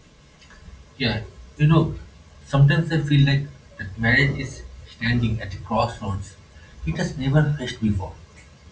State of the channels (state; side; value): identical; both; correlation 1.00